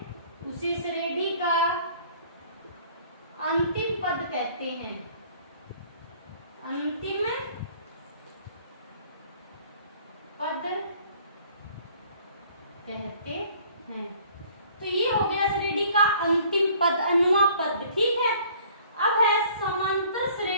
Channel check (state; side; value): inverted; both; correlation -0.55